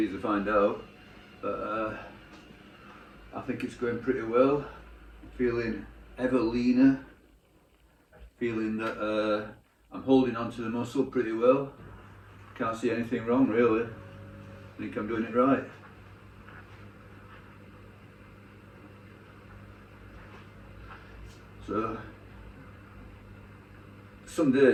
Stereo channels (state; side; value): identical; both; correlation 1.00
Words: to find out. But I think it's going pretty well. Feeling ever leaner. Feeling that I'm holding onto the muscle pretty well. Can't see anything wrong really. I think I'm doing it right. So some